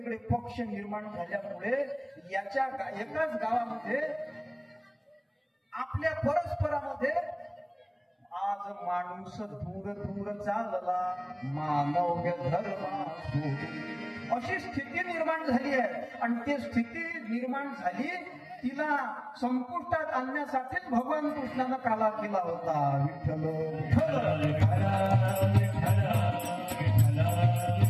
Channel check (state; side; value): identical; both; correlation 1.00